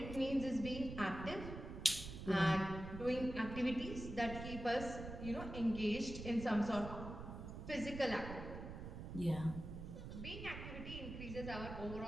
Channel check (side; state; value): right; noise; rumble, 8 dB below the sound